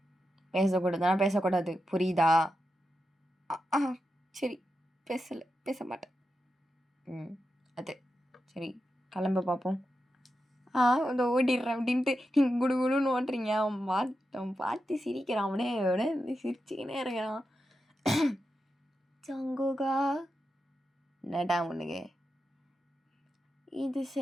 பேசக்கூடாது, புரியுதா? சரி, பேச மாட்டேன். அது சரி, கிளம்ப பார்ப்போம். அதை ஓடிடுறேன் அப்படின்ட்டு நீங்கள் குடுகுடுன்னு ஓட்டுறீங்க. அவன் பார்த்து சிரிக்கிறான். அவனே சிரிச்சுக்கினே இருக்கிறான். ஜங்குகா, என்னடா உனக்கு இது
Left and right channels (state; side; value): normal; both; correlation 0.89